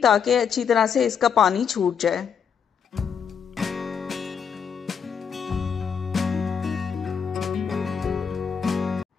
ताकि अच्छी तरह से इसका पानी छूट जाए।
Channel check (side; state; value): right; quieter; 7.0 dB